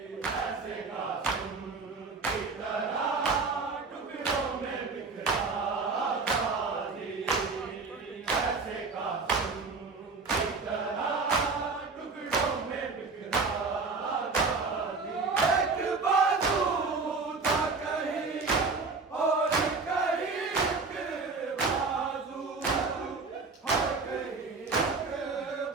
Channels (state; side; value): quieter; left; 4.2 dB